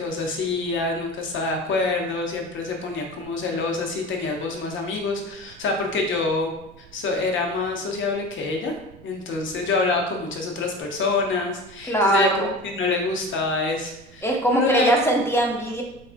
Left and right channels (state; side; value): noise; right; rumble, 23 dB below the sound